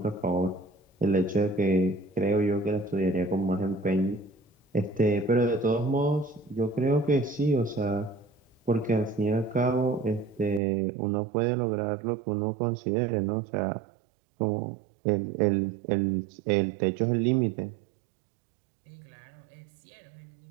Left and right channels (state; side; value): drops out; left; at 10.6 s